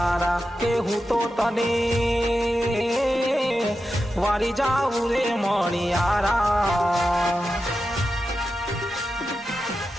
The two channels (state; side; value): normal; both; correlation 0.90